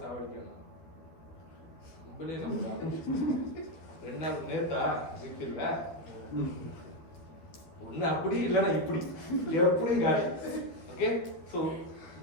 சாவடிக்கணும்? நம்மளே நம்ம 2 நேத்தா இருக்குல்ல, ஒன்று அப்படி இல்லைன்னா இப்படி, எப்படியும் காலி. Okay, so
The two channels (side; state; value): right; late; 12 ms